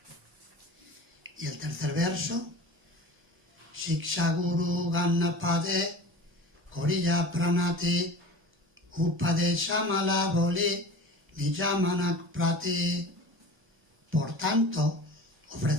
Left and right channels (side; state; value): both; normal; correlation 0.37